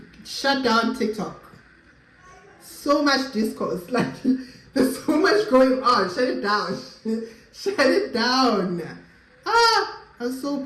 shut down TikTok. So much discourse, like, there's so much going on. Shut it down. Shut it down. I was so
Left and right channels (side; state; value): both; identical; correlation 1.00